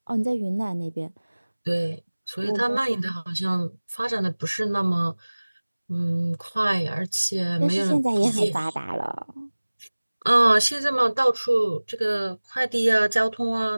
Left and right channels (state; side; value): inverted; both; correlation -1.00